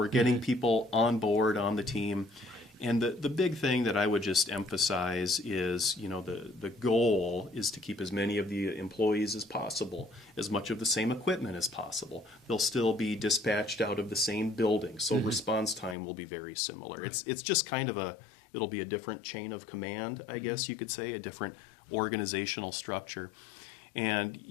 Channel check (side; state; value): right; drops out; at 16.0 s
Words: getting people on board on the team. And the big thing that I would just emphasize is, the goal is to keep as many of the employees as possible, as much of the same equipment as possible. They'll still be dispatched out of the same building, so response time will be very similar. Right. It's just kind of it'll be a different chain of command, I guess you could say, a different organizational structure. And,